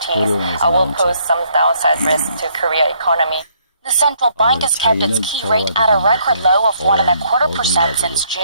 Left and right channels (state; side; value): inverted; both; correlation -0.68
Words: will pose some downside risks to Korea economy. The central bank has kept its key rate at a record low of 1.25% since